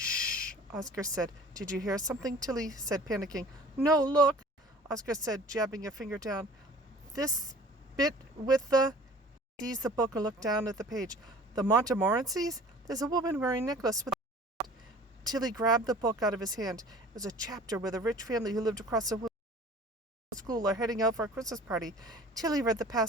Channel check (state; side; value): normal; both; correlation 0.46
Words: Oscar said. "Did you hear something?" Tilly said, panicking. "No, look," Oscar said, jabbing a finger down. "This bit with the—" He seized the book and looked down at the page. "The Montmorencys? There's a woman wearing a necklace with—" Tilly grabbed the book out of his hand. It was a chapter where the rich family who lived across the school are heading out for a Christmas party. Tilly read the